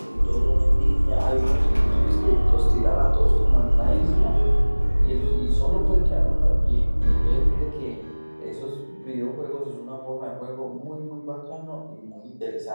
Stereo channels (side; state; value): both; inverted; correlation -1.00